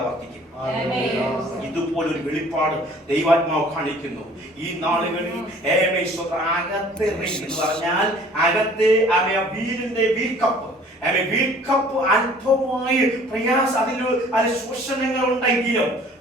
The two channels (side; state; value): both; normal; correlation 0.52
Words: വർദ്ധിക്കും. ഇതുപോലൊരു വെളിപ്പാട് ദൈവാത്മാവ് കാണിക്കുന്നു ഈ നാളുകളിൽ. അകത്ത് എന്ന് പറഞ്ഞാൽ അകത്ത് വീലിന്റെ വീൽക്കപ്പ് അല്പമായി പ്രയാസ അതിൽ ശോഷണങ്ങൾ ഉണ്ടെങ്കിലും